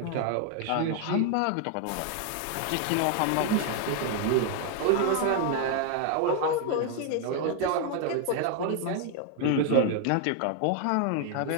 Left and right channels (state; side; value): different; both; correlation 0.00